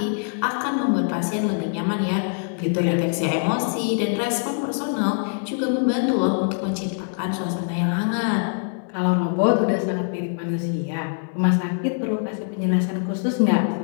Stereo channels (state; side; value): silent; right; 63 dB below the other